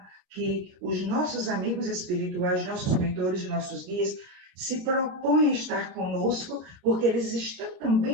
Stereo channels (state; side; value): late; left; 27 ms